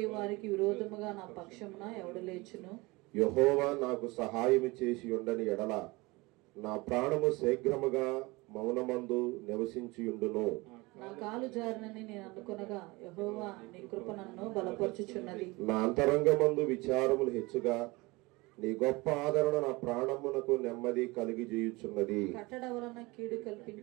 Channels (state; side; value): quieter; left; 23.5 dB